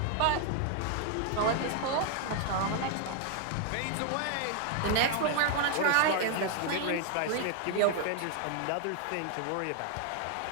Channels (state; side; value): different; both; correlation 0.00